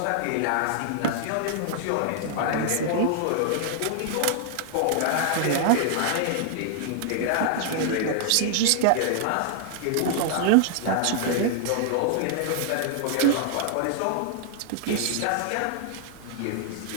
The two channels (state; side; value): different; both; correlation -0.01